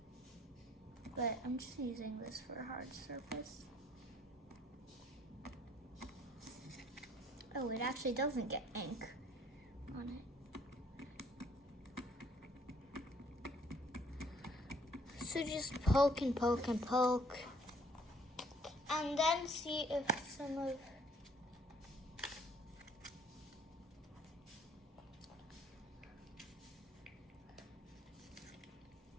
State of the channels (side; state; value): both; normal; correlation 0.62